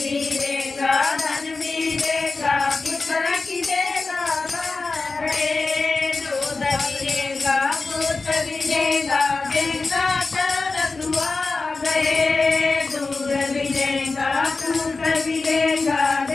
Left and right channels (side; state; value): right; quieter; 3.9 dB